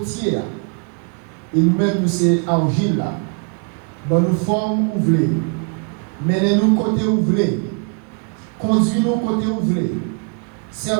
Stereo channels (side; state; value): left; quieter; 38.6 dB